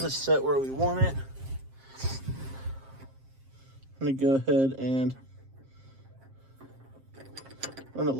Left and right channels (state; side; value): late; left; 7.5 ms